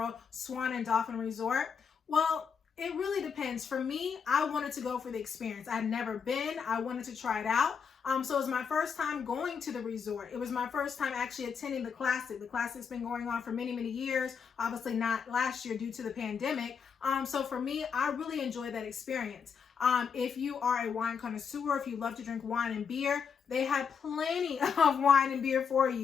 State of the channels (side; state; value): right; quieter; 6.5 dB